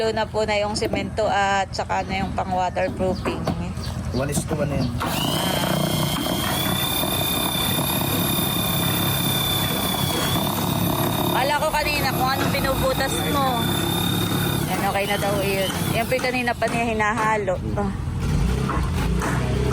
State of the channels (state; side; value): identical; both; correlation 1.00